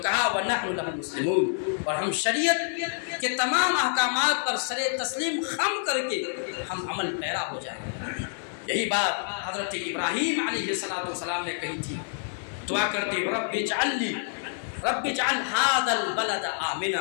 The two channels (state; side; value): silent; right; digital silence